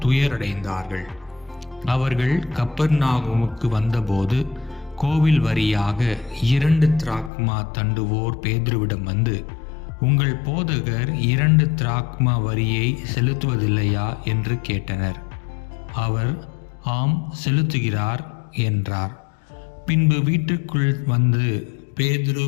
துயரடைந்தார்கள். அவர்கள் கப்பர்நாகுமுக்கு வந்தபோது கோவில் வரியாக 2 திராக்மா தண்டுவோர் பேதுருவிடம் வந்து, உங்கள் போதகர் 2 திராக்மா வரியை செலுத்துவதில்லையா என்று கேட்டனர். அவர், ஆம், செலுத்துகிறார் என்றார். பின்பு வீட்டுக்குள் வந்து பேதுரு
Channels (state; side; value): drops out; right; at 7.3 s